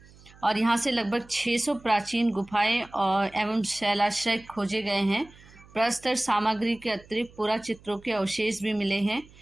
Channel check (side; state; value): right; noise; hum, 24 dB below the sound